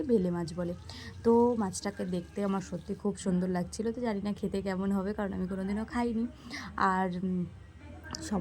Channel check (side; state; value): both; identical; correlation 1.00